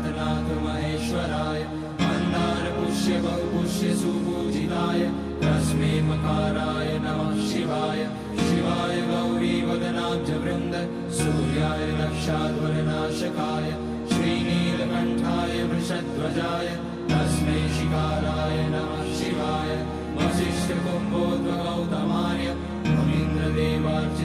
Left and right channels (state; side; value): identical; both; correlation 1.00